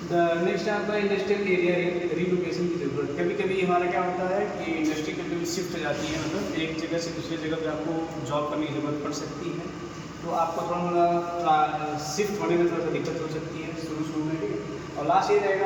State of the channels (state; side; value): identical; both; correlation 1.00